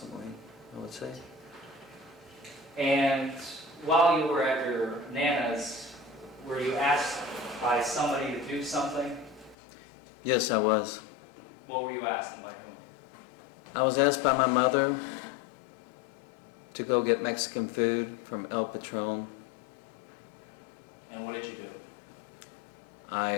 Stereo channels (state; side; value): drops out; right; at 9.6 s